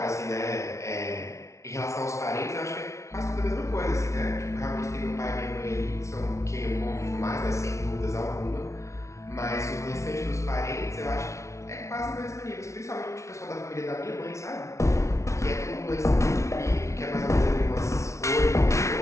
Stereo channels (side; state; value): right; late; 0.14 ms